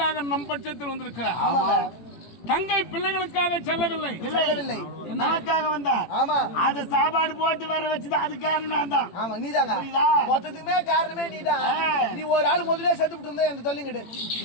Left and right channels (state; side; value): late; right; 18 ms